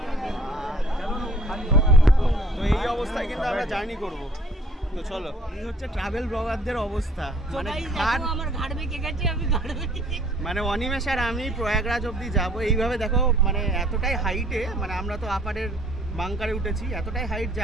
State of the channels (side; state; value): both; normal; correlation 0.57